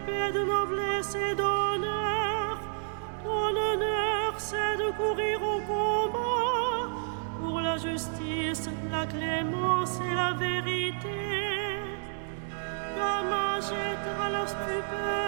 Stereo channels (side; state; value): left; silent; digital silence